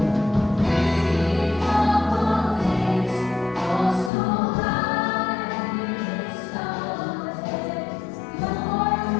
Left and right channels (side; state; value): right; drops out; at 4.1 s